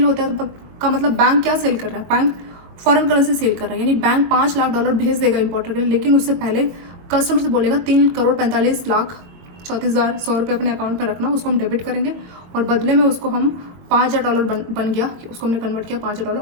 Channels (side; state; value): left; late; 22 ms